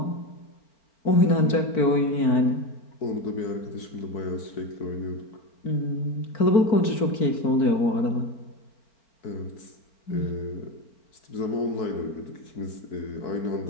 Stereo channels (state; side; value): late; right; 4.5 ms